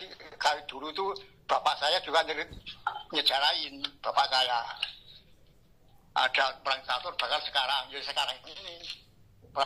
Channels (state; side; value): identical; both; correlation 1.00